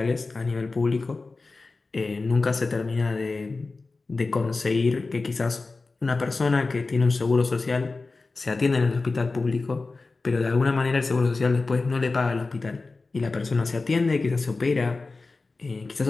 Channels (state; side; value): quieter; right; 3.7 dB